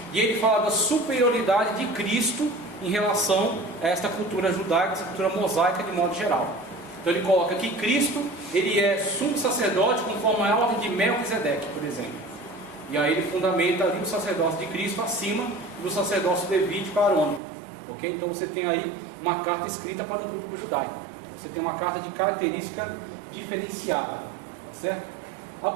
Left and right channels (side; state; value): left; drops out; at 17.4 s